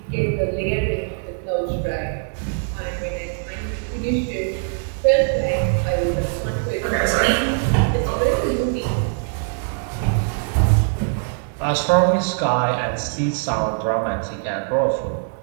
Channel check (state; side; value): silent; left; 59 dB below the other